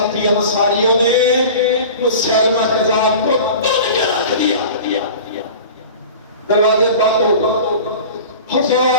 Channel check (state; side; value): inverted; both; correlation -0.38